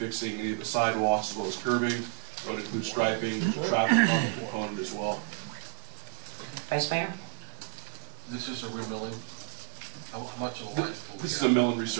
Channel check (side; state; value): left; silent; digital silence